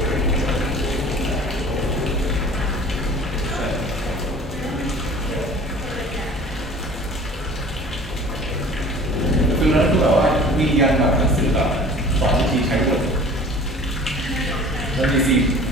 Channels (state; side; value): normal; both; correlation 0.45